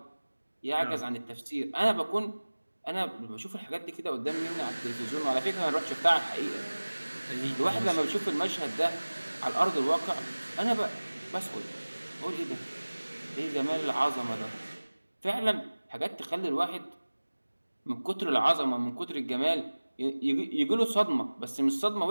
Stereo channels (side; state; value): both; inverted; correlation -1.00